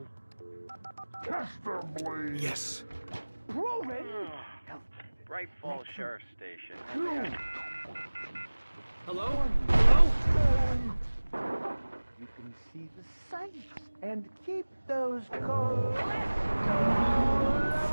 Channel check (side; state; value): both; inverted; correlation -1.00